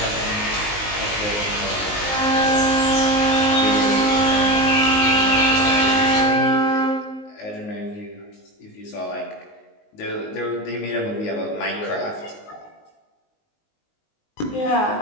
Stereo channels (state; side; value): late; right; 19 ms